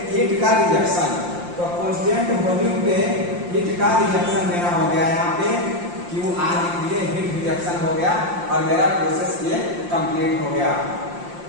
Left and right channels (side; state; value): left; late; 5.7 ms